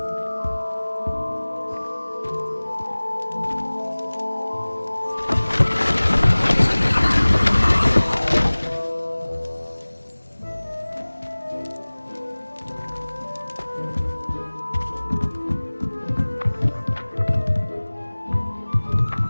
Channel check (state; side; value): inverted; both; correlation -1.00